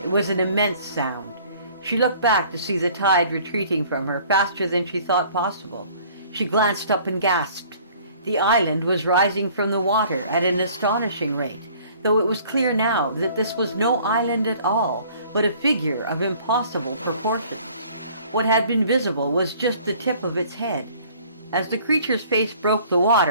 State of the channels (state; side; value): inverted; both; correlation -0.54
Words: It was an immense sound. She looked back to see the tide retreating from her faster than she thought possible. She glanced up and gasped. The island was rising from the water at an astonishing rate, though it was clear now that this was no island at all, but a figure of impossible proportions. What had been visible was just the tip of its head. As the creature's face broke the